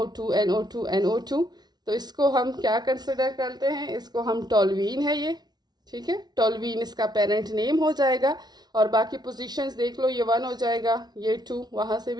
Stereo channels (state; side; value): late; left; 0.19 ms